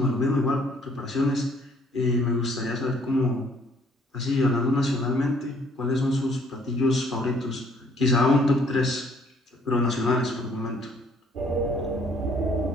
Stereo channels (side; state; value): both; normal; correlation 0.62